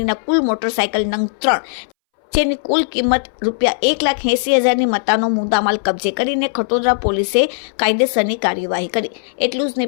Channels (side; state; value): right; silent; 65 dB below the other